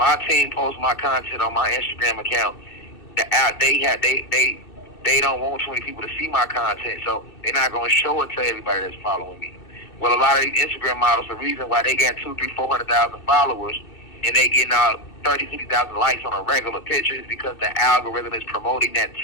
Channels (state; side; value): late; right; 2.6 ms